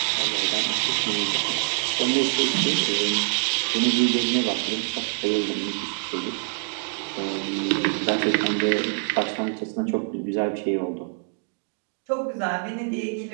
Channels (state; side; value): silent; left; digital silence